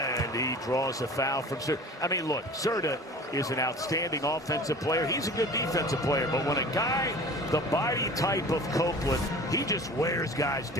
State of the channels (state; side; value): normal; both; correlation 0.41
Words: he draws a foul from Certa. I mean, look, Certa is an outstanding offensive player. He's a good defensive player. But when a guy, the body type of Copeland, he just wears guys